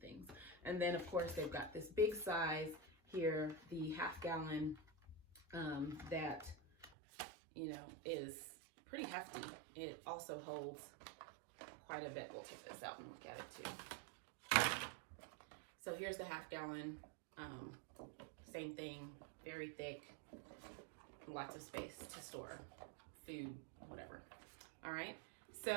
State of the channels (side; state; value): left; drops out; at 6.9 s